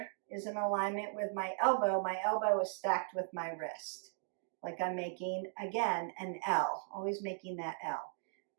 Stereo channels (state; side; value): silent; left; digital silence